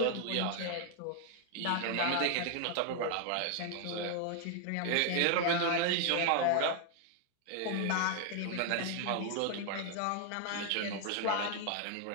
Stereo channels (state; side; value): different; both; correlation 0.00